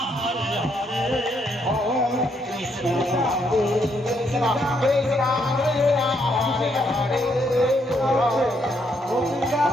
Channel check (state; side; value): normal; both; correlation 0.74